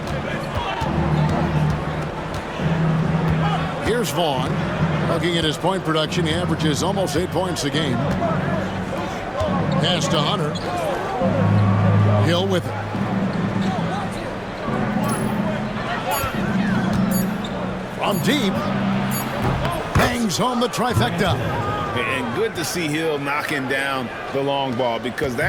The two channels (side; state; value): both; identical; correlation 1.00